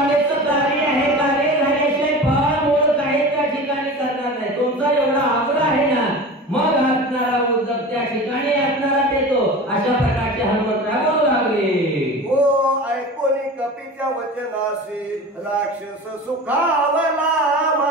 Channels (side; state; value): both; normal; correlation 0.34